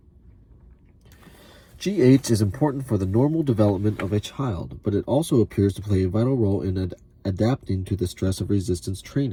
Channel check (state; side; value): identical; both; correlation 1.00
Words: GH is important for the normal development of a child, but it also appears to play a vital role in adapting to the stress of resistance